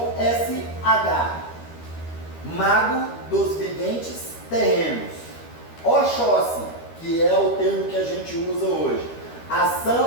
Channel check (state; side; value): late; right; 13 ms